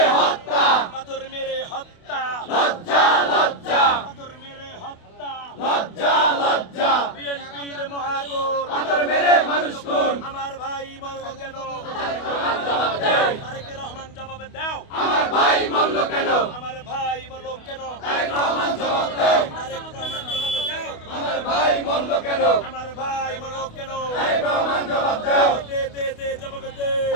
হত্যা পাথর মেরে হত্যা লজ্জা লজ্জা পাথর মেরে হত্যা লজ্জা লজ্জা বিএনপির মহাগুণ পাথর মেরে মানুষ খুন আমার ভাই মরল কেন তারেক রহমান জবাব দাও আমার ভাই মরল কেন আমার ভাই মরল কেন তারেক রহমান জবাব দাও তারেক রহমান জবাব দাও আমার ভাই মরল কেন আমার ভাই মরল কেন তারেক রহমান জবাব দাও দে দে দে জবাব দে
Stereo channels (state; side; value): late; right; 28 ms